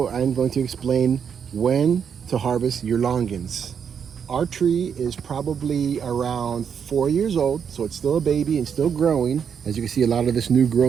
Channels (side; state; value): left; quieter; 7.3 dB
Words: I'm going to explain when to harvest your longans. Our tree is probably around 4 years old, so it's still a baby and still growing. As you can see, a lot of this new